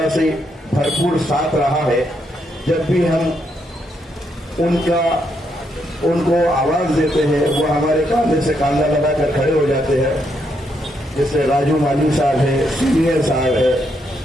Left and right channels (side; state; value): both; normal; correlation 0.77